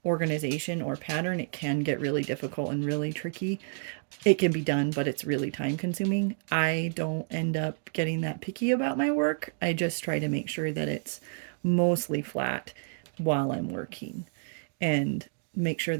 organization or pattern, it can get really difficult and really tricky. It can be done, but it's really time consuming. I don't end up getting that picky about my work. I just try to make sure that it's mostly flat while I'm working and make sure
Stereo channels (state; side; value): silent; left; digital silence